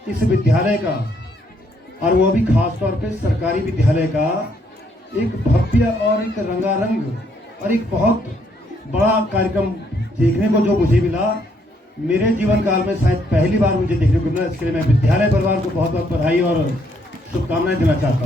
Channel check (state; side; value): normal; both; correlation 0.71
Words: इस विद्यालय का, और वो भी खास तौर पे सरकारी विद्यालय का, एक भव्य और एक रंगारंग और एक बहुत बड़ा कार्यक्रम देखने को जो मुझे मिला, मेरे जीवन काल में शायद पहली बार मुझे देखने को मिला। इसके लिए मैं विद्यालय परिवार को बहुत बहुत बधाई और शुभकामनाएं देना चाहता